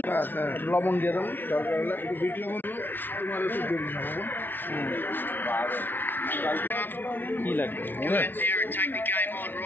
লবণ দিয়ে দেবো দরকার হলে একটু বিট লবণ দেবো তোমার একটু দিয়ে দিলাম কি লাগবে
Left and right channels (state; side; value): late; right; 0.095 ms